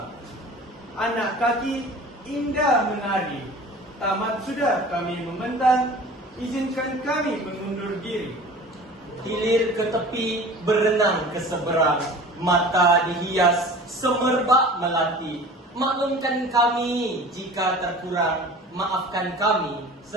anak kaki indah menari. Tamat sudah kami membentang, izinkan kami mengundur diri. Hilir ke tepi, berenang ke seberang, mata dihias, semerbak melati. Maklumkan kami jika terkurang, maafkan kami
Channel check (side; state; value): both; normal; correlation 0.41